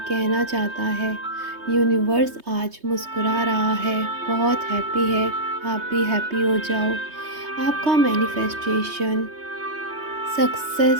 चाहता है, यूनिवर्स आज मुस्कुरा रहा है, बहुत हैप्पी है। आप भी हैप्पी हो जाओ। आपका मैनिफेस्टेशन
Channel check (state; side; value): late; left; 3.2 ms